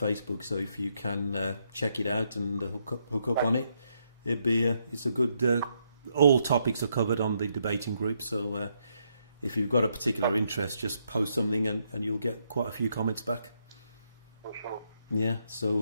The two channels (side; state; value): both; inverted; correlation -0.77